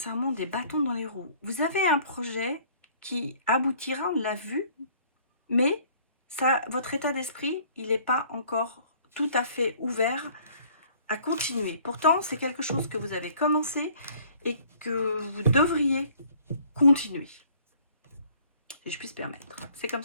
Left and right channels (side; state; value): both; inverted; correlation -0.56